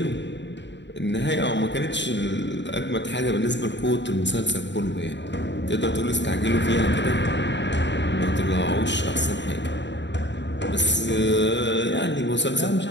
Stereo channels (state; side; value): late; right; 0.52 ms